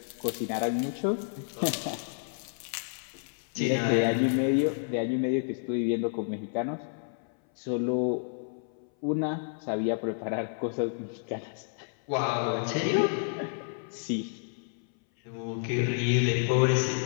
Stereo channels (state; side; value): silent; right; 58 dB below the other